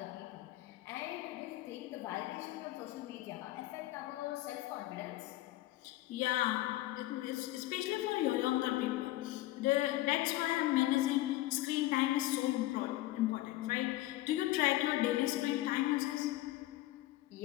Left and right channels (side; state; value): right; quieter; 16.6 dB